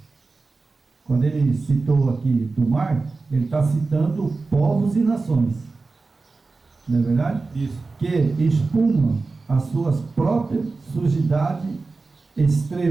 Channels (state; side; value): quieter; left; 3.8 dB